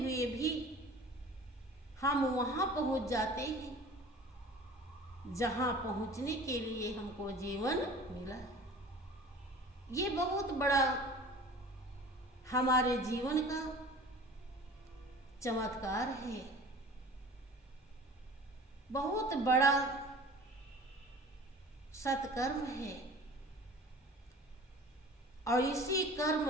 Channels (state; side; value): normal; both; correlation 0.43